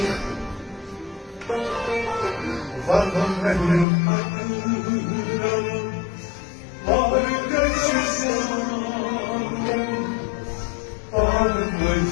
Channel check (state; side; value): drops out; right; at 3.9 s